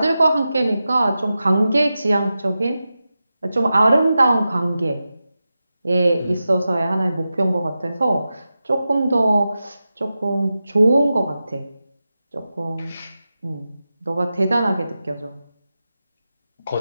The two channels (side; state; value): both; inverted; correlation -0.92